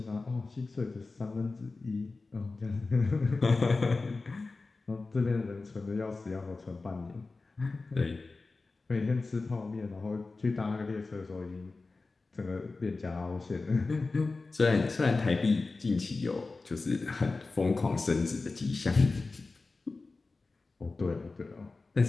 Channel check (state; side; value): quieter; right; 3.7 dB